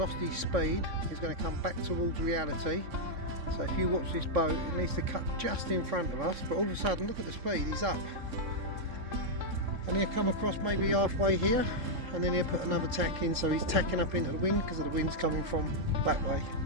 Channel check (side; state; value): left; late; 3.6 ms